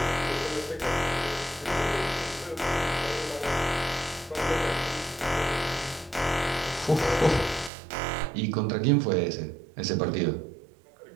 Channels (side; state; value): left; drops out; at 7.7 s